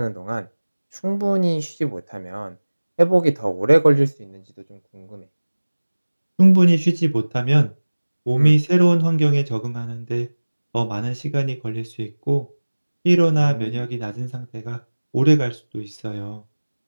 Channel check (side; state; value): both; inverted; correlation -1.00